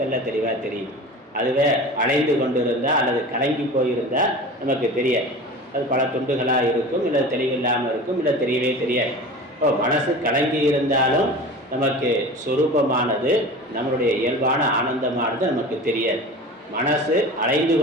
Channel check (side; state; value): both; normal; correlation 0.35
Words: தெளிவாக தெரியும். அதுவே அலைந்து கொண்டு இருந்தால் அல்லது கலங்கி போயிருந்தால் நமக்கு தெரியாது. அது பல துண்டுகளாக இருக்கும், இல்லை தெளிவில்லாமல் இருக்கும், இல்லை தெரியவே தெரியாது. இப்போ மனசு கலங்கி இருந்தாலும் நமக்கு சொரூபமானது, நம்மளுடைய இயல்பான ஆனந்தமானது நமக்கு தெரியாது. மனசு அலைந்து